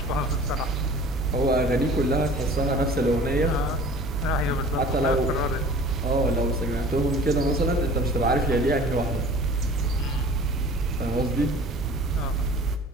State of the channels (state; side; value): normal; both; correlation 0.45